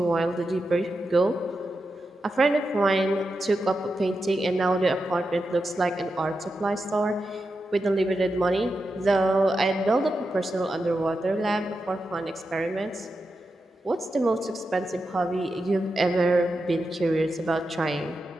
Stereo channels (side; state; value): both; normal; correlation 0.89